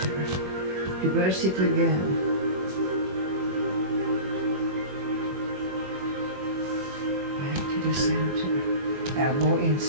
reverse it again. The center, elbow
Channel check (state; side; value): late; left; 21 ms